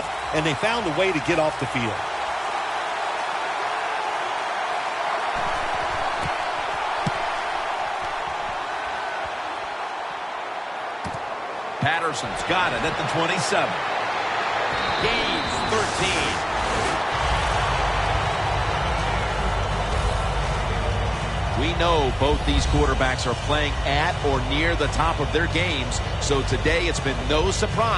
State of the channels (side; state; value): both; identical; correlation 1.00